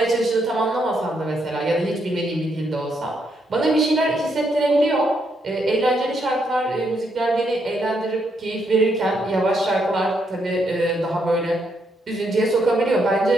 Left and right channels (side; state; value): both; normal; correlation 0.77